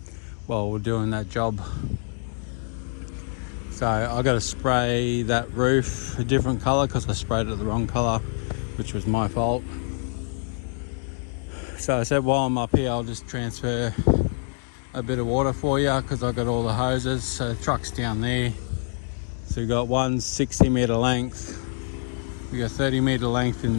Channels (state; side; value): silent; right; 61 dB below the other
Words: while we're doing that job. So I got to spray that roof a different colour because I sprayed it the wrong colour, which was my fault. So I said, while I'm up here, I'll just transfer a bit of water for you because I got all the hoses. So the truck's down there. So we've got one 60 metre length, we got 30 metre length in the